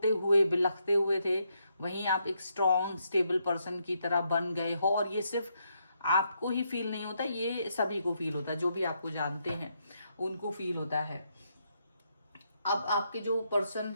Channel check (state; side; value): inverted; both; correlation -0.78